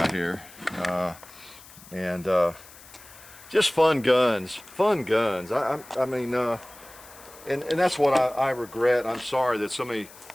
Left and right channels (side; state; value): left; noise; hiss, 20 dB below the sound